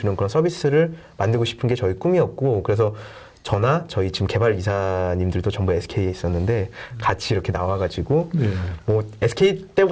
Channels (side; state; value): both; identical; correlation 1.00